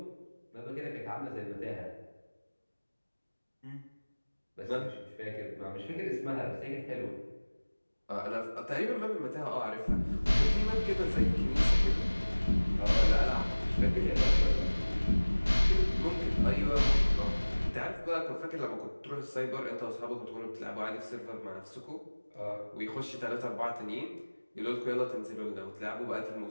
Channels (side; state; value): both; inverted; correlation -1.00